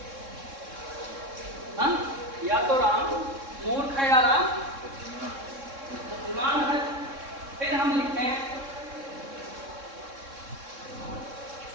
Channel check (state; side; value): late; left; 3.6 ms